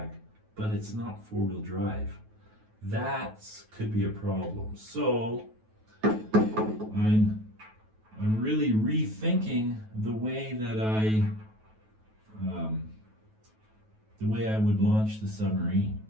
but it's not four-wheel drive. That could be a problem. So I'm really rethinking the way that I would launch the Submarine.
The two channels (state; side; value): late; left; 9.3 ms